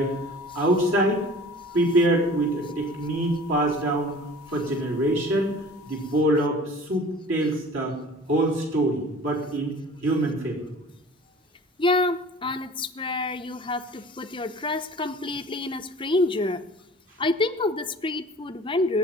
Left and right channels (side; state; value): both; normal; correlation 0.44